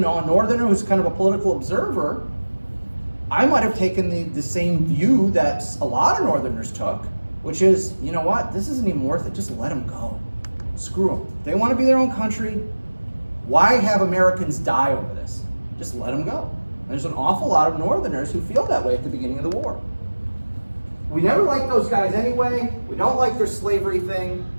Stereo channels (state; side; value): inverted; both; correlation -1.00